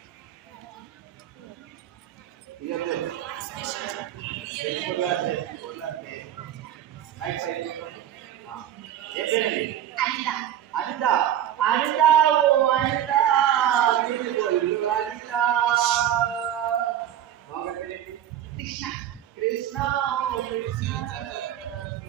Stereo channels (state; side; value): quieter; left; 11.0 dB